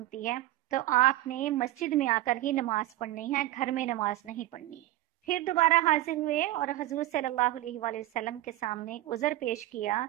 है तो आपने मस्जिद में आकर ही नमाज पढ़नी है, घर में नमाज नहीं पढ़नी। फिर दोबारा हाजिर हुए और हजूर सल्लल्लाहु अलैहि वसल्लम के सामने उज़र पेश किया।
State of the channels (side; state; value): left; quieter; 15.5 dB